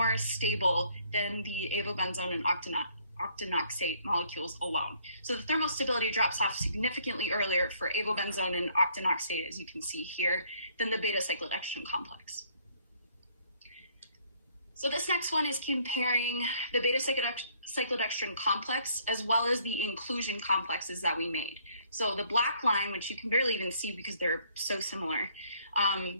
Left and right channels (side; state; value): both; inverted; correlation -0.64